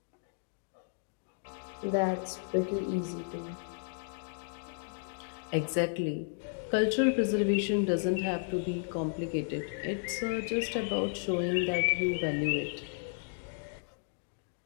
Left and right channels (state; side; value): silent; right; digital silence